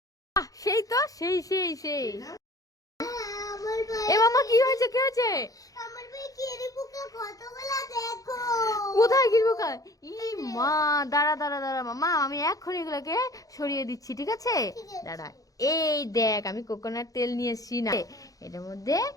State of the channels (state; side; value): late; right; 0.17 ms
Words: সেই তো, সেই। আমার ভাই, এ মামা, কি হয়েছে, কি হয়েছে? আমার ভাই কেড়ে পোকা কতগুলা দেখো। কোথায় গিরবো কার? ই মা, দাঁড়া মামা, আমি এক্ষুনি এগুলোকে সরিয়ে দিচ্ছি, ঠিক আছে? ঠিক আছে। দাঁড়া, এই দেখ, আমি কোকোনাট তেল নিয়ে এসছি না, এটার মধ্যে